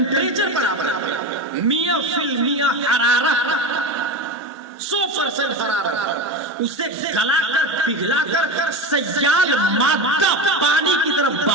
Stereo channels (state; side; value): normal; both; correlation 0.22